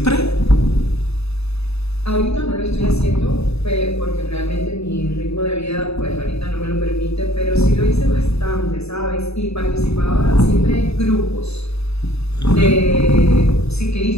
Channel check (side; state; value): right; late; 0.79 ms